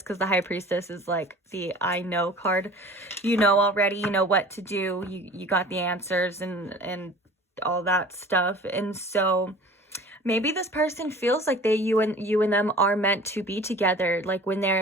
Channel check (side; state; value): both; normal; correlation 0.43